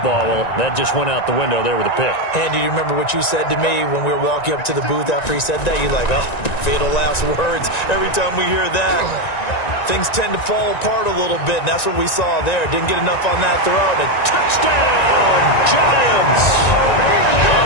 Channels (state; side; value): late; right; 1.9 ms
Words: Well, that just went out the window there with a pick. And do you remember what you said to me when we were walking up to the booth after he said that? You're like, oh, fatal last words. Every time we hear that, things tend to fall apart a little bit, and that's what we saw there. Didn't get enough on that throw. And a touchdown, Giants!